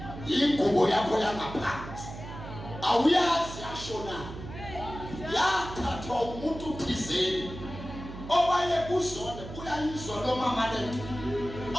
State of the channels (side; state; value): right; noise; hum, 11 dB below the sound